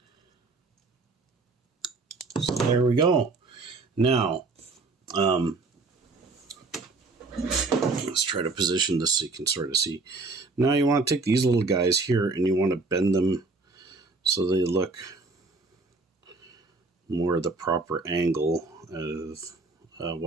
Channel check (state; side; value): quieter; left; 3.7 dB